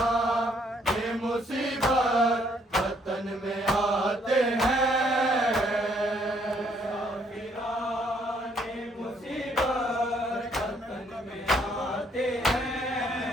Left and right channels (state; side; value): normal; both; correlation 0.67